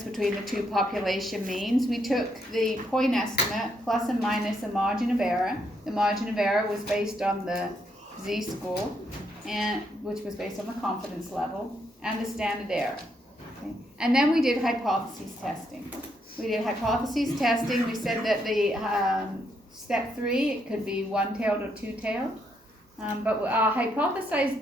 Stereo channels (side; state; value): both; normal; correlation 0.76